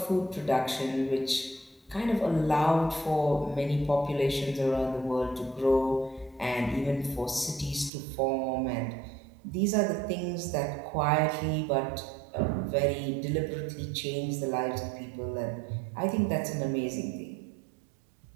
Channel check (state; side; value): drops out; left; at 7.9 s